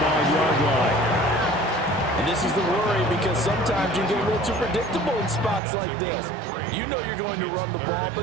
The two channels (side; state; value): left; drops out; at 5.6 s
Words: line. And this is the worry because sometimes you get a little too predictable in spots like this. You know you're going to run the ball,